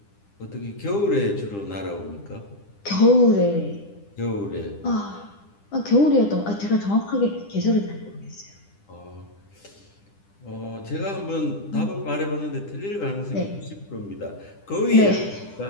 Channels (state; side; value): late; right; 10 ms